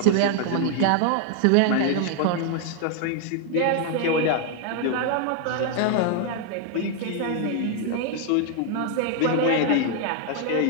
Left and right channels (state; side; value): different; both; correlation 0.00